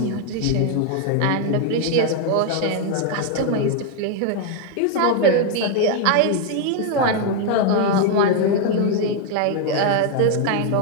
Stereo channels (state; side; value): different; both; correlation 0.00